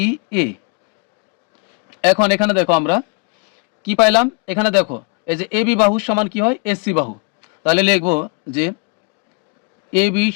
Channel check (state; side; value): quieter; right; 34.3 dB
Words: এ। এখন এখানে দেখো আমরা কি পাইলাম, এখানে দেখো এই যে এ বি বাহু সমান কি হয় এসি বাহু। তাহলে লিখবো যে এ বি